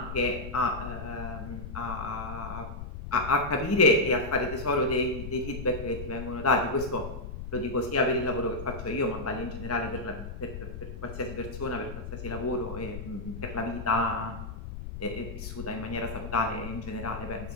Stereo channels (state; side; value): noise; left; rumble, 8 dB below the sound